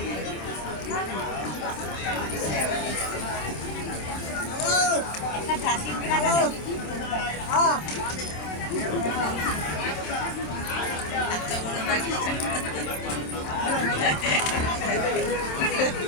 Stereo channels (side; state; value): right; late; 27 ms